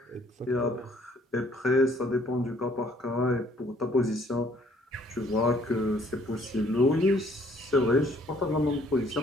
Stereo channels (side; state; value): both; normal; correlation 0.62